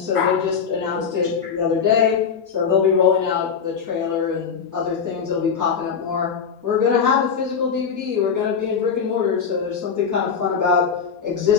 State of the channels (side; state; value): right; quieter; 6.5 dB